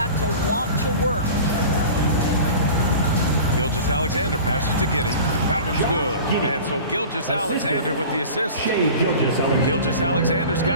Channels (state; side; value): inverted; both; correlation -0.38